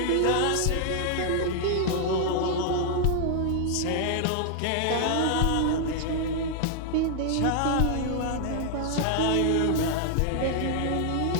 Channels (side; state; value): both; different; correlation 0.00